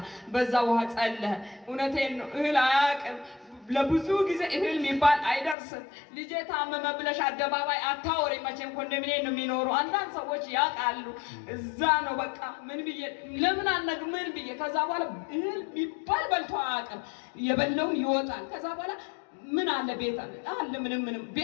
በዛ ውሃ ጸለህ። እውነቴን ነው። እህል አያውቅም። ለብዙ ጊዜ እህል የሚባል አይደርስም። ልጄ ታመመ ብለሽ አደባባይ አታወሪ። መቼም ኮንዶሚኒየም ነው የሚኖሩ አንዳንድ ሰዎች ያውቃሉ። እዛ ነው በቃ ምን ብዬ ለምን አነግ ምን ብዬ ከዛ በኋላ እህል የሚባል በልቶ አያውቅም። የበላውን ይወጣል። ከዛ በኋላ ምን አለ ቤት አለ ምንም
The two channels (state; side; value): drops out; right; at 5.6 s